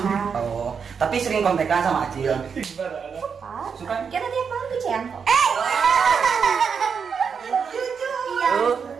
Oh, tapi sering kontekan sama Acil. Suka? Kita tiap malam tuh Cian kok. Jujur. Iya.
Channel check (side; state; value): left; quieter; 6.3 dB